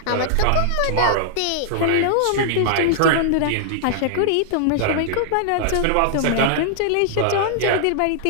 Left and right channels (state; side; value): different; both; correlation -0.01